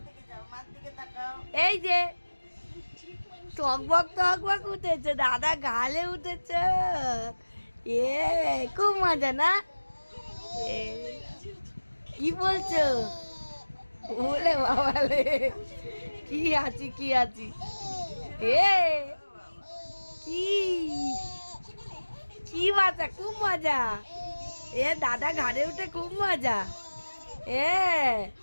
এই যে টকবক উঠেছে, দাদা গালে উঠেছ। এ খুব মজা না? এ, কি বলছো? বলে বাবালে, কি আছি কি আছি। এ কি কি মজা, খুব মজা। এ দাদা ঘাড়ে উঠে খুব মজা। এ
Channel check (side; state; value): both; inverted; correlation -1.00